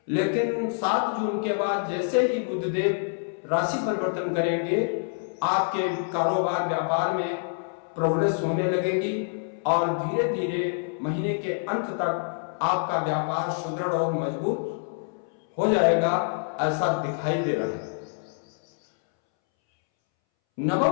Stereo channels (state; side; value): silent; right; 61 dB below the other